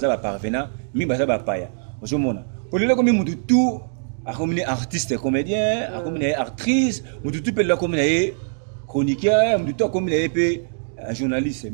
ba parvenant, mi baza ba paya. Ozomona. Pour le comme mutu tout a comme artiste comédien, a comme actrice, mutu tout peut la comme chroniqueur, mutu tout comme journaliste.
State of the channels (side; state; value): left; silent; digital silence